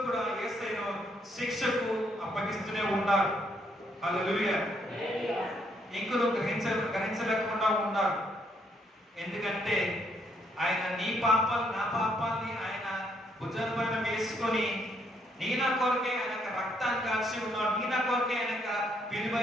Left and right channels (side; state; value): both; normal; correlation 0.72